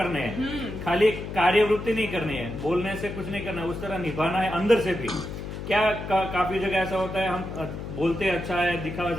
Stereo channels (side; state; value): left; noise; hum, 8 dB below the sound